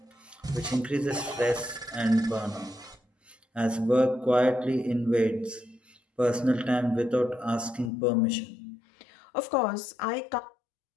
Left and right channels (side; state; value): right; drops out; at 7.9 s